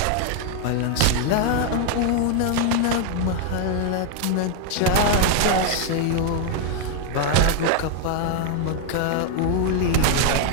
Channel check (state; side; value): different; both; correlation 0.00